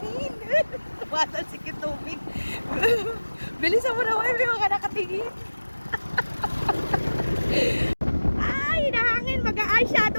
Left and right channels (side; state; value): both; inverted; correlation -1.00